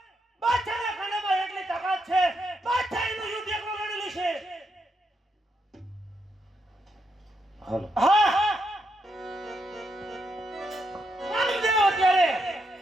બાદશાહના ખાનામાં એટલી તાકાત છે બાદશાહ એનું યુદ્ધ એકલો લડેલું છે. હાલો હા હા રામદેવ અત્યારે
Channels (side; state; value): both; normal; correlation 0.81